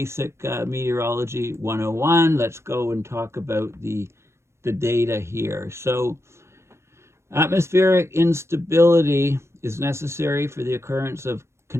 meteorology 101. Let's go and talk about the data here. So atmospheric instability is necessary for the occurrence of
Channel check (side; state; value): left; late; 0.13 ms